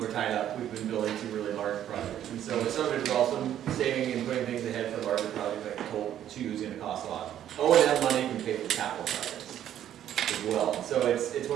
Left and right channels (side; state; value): left; quieter; 11.0 dB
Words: are tied up. We've been building 2 really large projects. And so some of it is also saving and putting things ahead for larger projects like Toll 2 is gonna cost a lot. O&M money can pay for capital projects as well. So it's